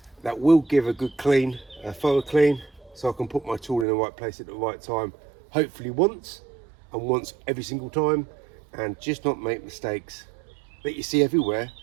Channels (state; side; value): drops out; left; at 3.9 s